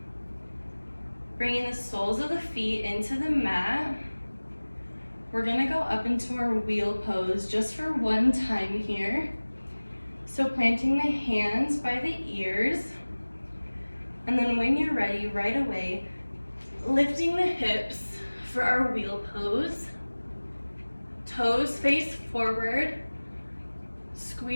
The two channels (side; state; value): both; inverted; correlation -1.00